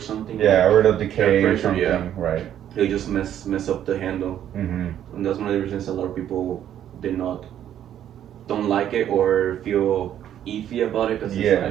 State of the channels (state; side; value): quieter; left; 10.6 dB